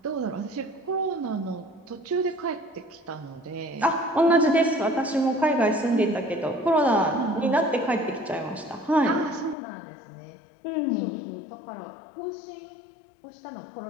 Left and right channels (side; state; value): right; drops out; at 9.6 s